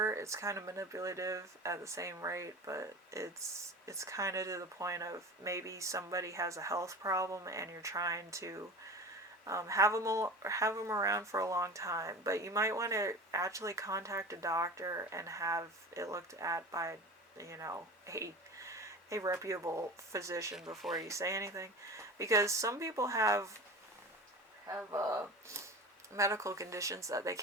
It's kind of manipulative at the same rate, but it's kind of to the point of maybe somebody has a health problem and you're trying to have them around for a long time, but you might want to actually contact a doctor and have it looked at by, you know, a reputable physician before you say anything, because some people have medical conditions that they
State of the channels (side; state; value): both; normal; correlation 0.33